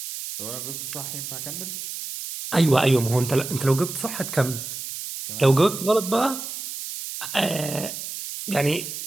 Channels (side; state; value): right; noise; hiss, 8 dB below the sound